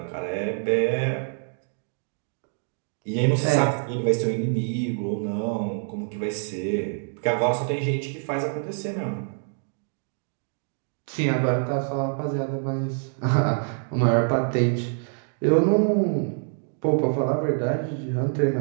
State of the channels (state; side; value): silent; left; 61 dB below the other